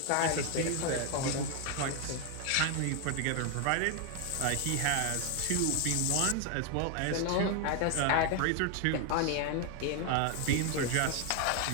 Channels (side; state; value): both; different; correlation 0.01